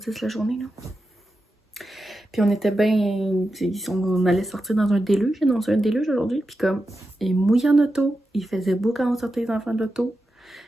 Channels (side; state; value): both; normal; correlation 0.90